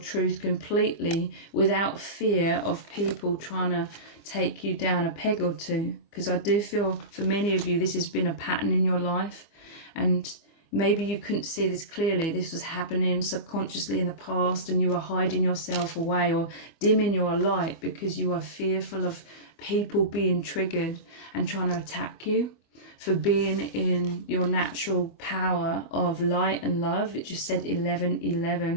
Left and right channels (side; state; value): right; late; 24 ms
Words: completely without fear of people trying to take you down a peg or two. Because I do feel for many of you this has been a pattern in your life, and maybe you couldn't see this clearly. This was happening subconsciously in the past and you were hiding yourself away or dimming your light because you are fearful of people being triggered and trying to attack you for being in your natural power of light and love. It just said